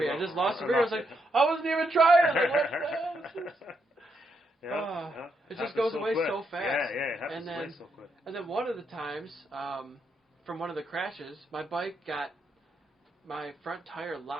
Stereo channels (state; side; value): normal; both; correlation 0.79